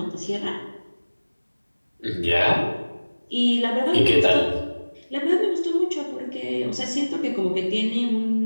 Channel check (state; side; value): inverted; both; correlation -1.00